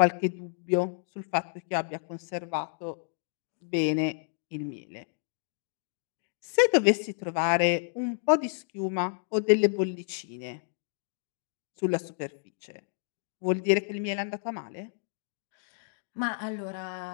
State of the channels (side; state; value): right; silent; digital silence